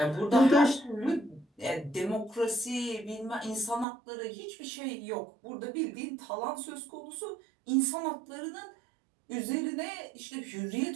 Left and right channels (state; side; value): drops out; left; at 3.9 s